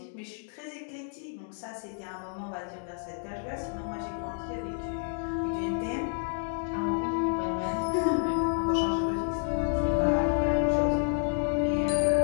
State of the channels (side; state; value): right; silent; 57 dB below the other